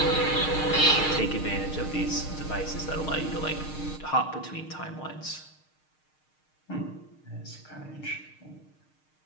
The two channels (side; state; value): right; late; 6.5 ms